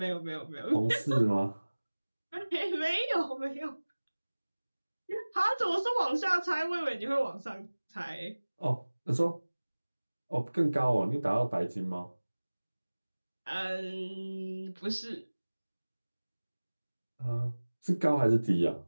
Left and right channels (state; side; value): inverted; both; correlation -1.00